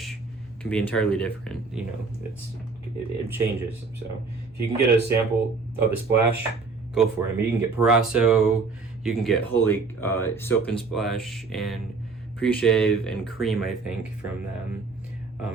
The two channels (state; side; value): quieter; left; 4.3 dB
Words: can be entirely different. You know, it changes. So if you can get a sample of the Splash, go for it. I mean, you can get Parasso, you can get Holy Soap and Splash and Pre-Shave and Cream, I think, from them.